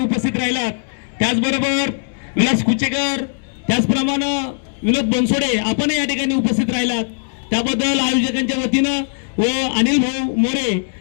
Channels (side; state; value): right; silent; 67 dB below the other